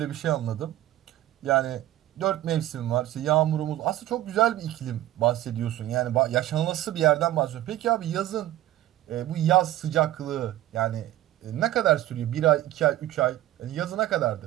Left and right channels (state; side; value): quieter; left; 14.3 dB